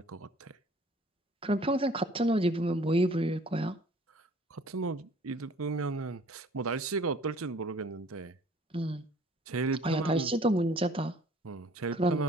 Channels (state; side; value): normal; both; correlation 0.54